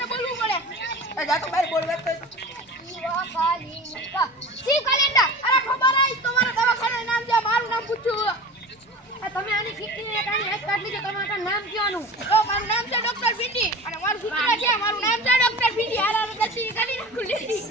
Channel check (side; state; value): both; normal; correlation 0.35